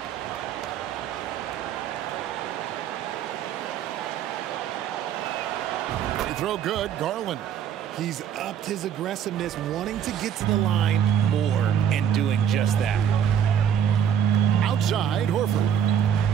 Throw good, Garland. He's upped his aggressiveness, wanting to get to the line more and doing just that. Outside, Horford.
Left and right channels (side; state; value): left; quieter; 8.9 dB